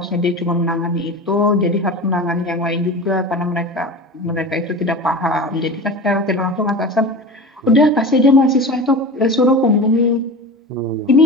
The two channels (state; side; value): normal; both; correlation 0.31